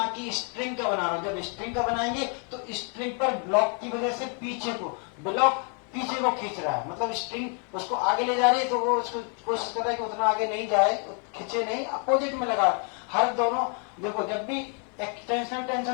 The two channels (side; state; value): right; quieter; 39.8 dB